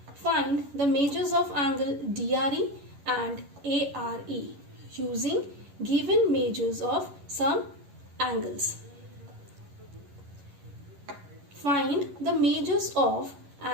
Find the measures of angle DRE and ARE using given measures of some angles. Find the measures of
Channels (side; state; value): left; late; 11 ms